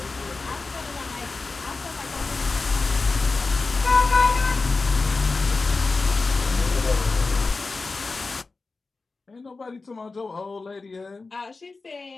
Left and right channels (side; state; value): right; quieter; 3.9 dB